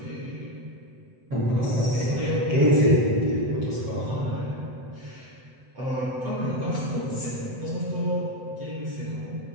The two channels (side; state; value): left; late; 7.9 ms